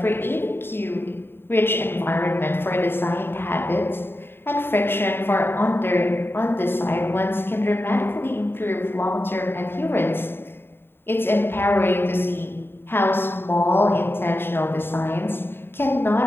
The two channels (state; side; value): late; right; 0.11 ms